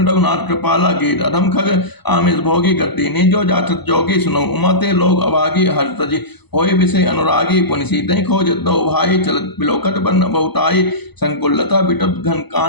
रघुनाथ कृपाला। गीत अधम खग आमिष भोगी गति निजो जाचत जोगी। सुनो उमाते लोग अभागी हर्ष तजी होय विषय अनुरागी। पुनि सीतहि खोजत दो भाई चलत बिलोकत बन बहुताई। संकुलता बिटप घन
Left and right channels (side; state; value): right; late; 0.99 ms